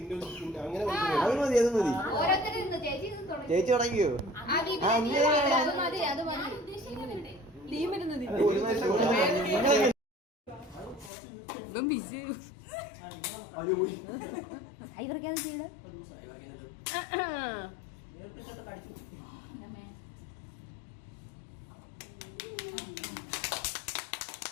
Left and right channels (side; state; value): right; drops out; at 11.1 s